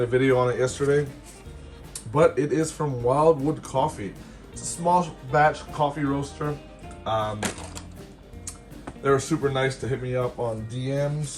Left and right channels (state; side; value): identical; both; correlation 1.00